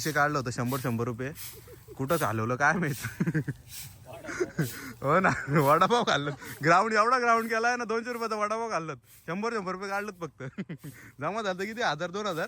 काढलं होतं 100 रुपये कुठंच हलवलं काय माहित हो ना वडापाव खाल्लं ग्राउंड एवढा ग्राउंड केला आहे ना 200 रुपयाचा वडापाव खाल्लं 100 रुपये काढलं फक्त जमा झालं किती 1000-2000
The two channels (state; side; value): identical; both; correlation 1.00